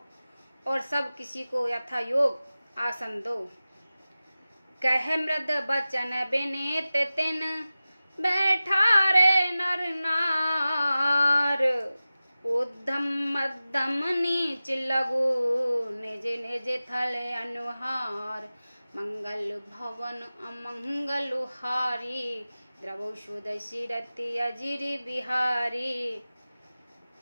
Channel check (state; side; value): inverted; both; correlation -0.96